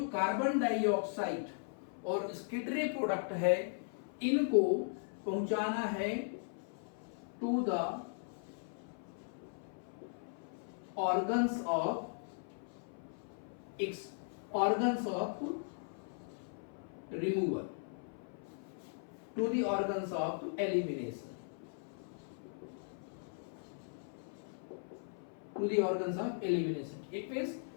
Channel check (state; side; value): silent; right; 52 dB below the other